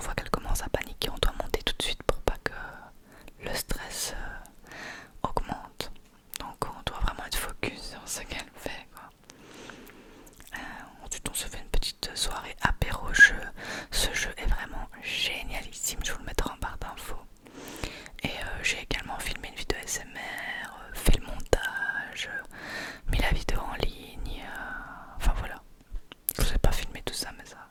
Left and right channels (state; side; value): identical; both; correlation 1.00